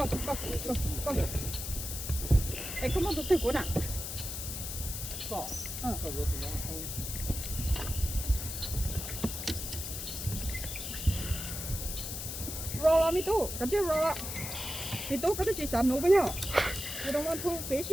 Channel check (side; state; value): left; noise; hiss, 6 dB below the sound